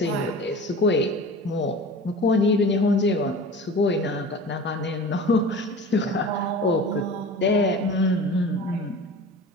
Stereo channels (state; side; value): normal; both; correlation 0.37